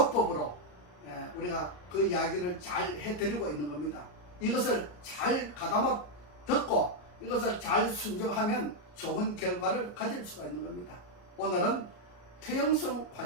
우리가 그 이야기를 잘 해드리고 있는 겁니다. 이것을 잘 가다마 듣고 이것을 잘 순종하면 좋은 결과를 가질 수가 있는 겁니다. 오늘은 퇴행성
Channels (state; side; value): late; right; 34 ms